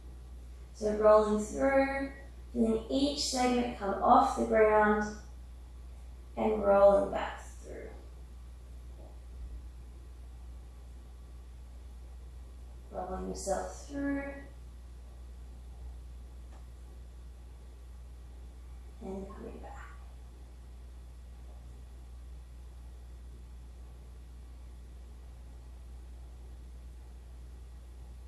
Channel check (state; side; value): identical; both; correlation 1.00